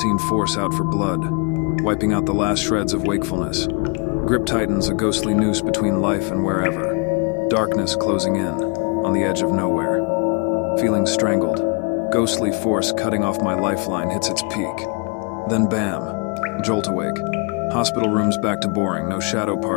force out for blood, wiping out the last shreds of wakefulness. Grip tightens a ghostly noose between life and wherever. Darkness closing in, on the edge of nowhere. Feeling strangled. Ghostly force cutting off my lifeline hits its peak. Then bam, jolt awake. Hospital room's back to boring, no shadow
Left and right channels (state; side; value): quieter; right; 33.6 dB